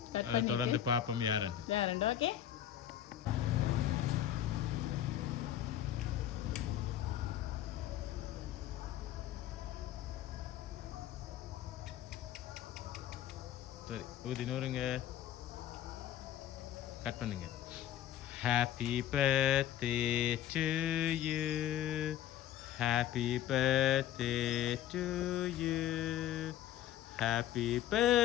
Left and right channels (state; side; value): quieter; right; 11.6 dB